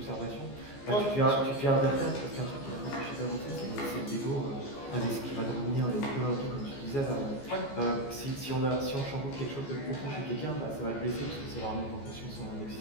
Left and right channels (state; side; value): late; right; 14 ms